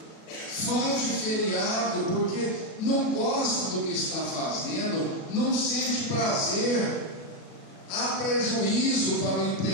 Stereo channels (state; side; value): late; right; 37 ms